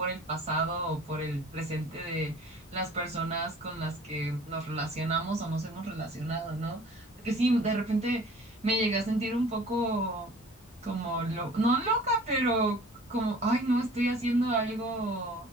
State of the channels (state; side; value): normal; both; correlation 0.48